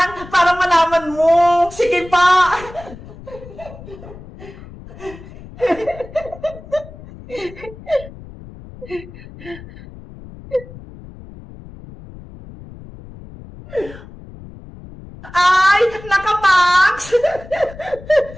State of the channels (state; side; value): noise; left; rumble, 17 dB below the sound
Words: para malaman mo. Sige pa. Ay, naka-max!